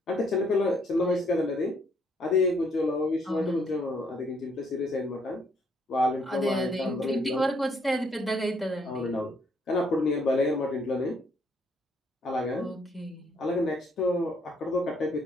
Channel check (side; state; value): both; normal; correlation 0.68